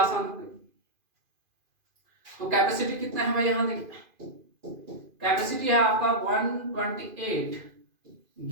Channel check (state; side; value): late; left; 2.5 ms